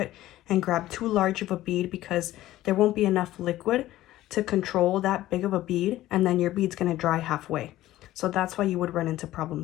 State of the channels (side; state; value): right; quieter; 15.1 dB